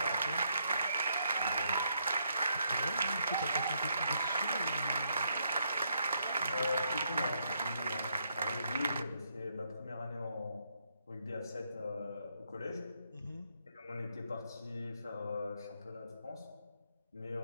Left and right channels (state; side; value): inverted; both; correlation -0.76